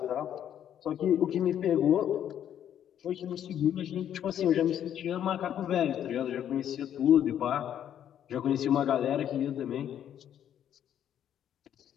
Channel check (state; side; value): quieter; right; 10.0 dB